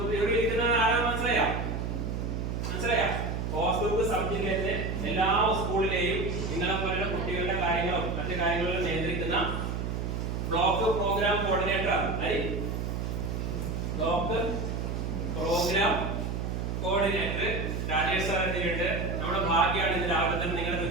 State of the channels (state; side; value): noise; right; hum, 2 dB below the sound